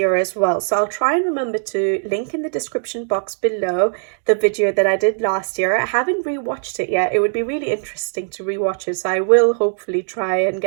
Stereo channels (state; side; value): silent; left; digital silence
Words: as well. So I'll try and remember to link in the description box below the video that I did last year. I haven't rewatched it yet. It would be really interesting to rewatch it, so I will hopefully try and